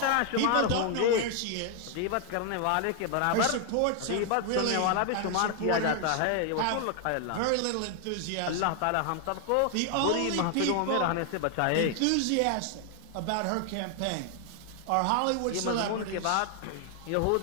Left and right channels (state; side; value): different; both; correlation 0.00